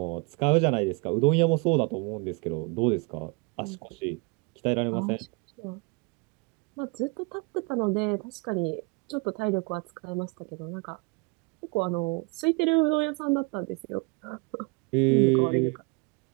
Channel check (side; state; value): left; quieter; 30.3 dB